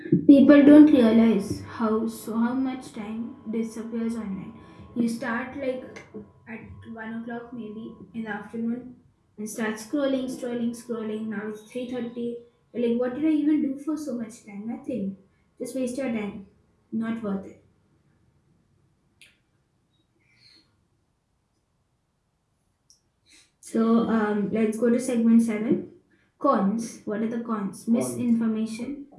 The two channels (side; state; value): both; identical; correlation 1.00